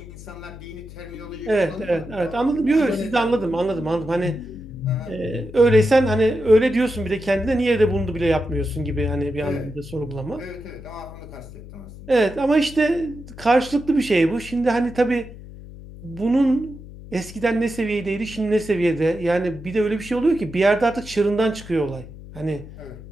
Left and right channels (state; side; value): noise; left; hum, 15 dB below the sound